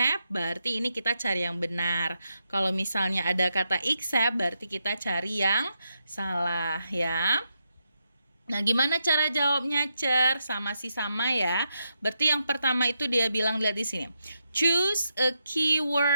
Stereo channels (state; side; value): inverted; both; correlation -0.83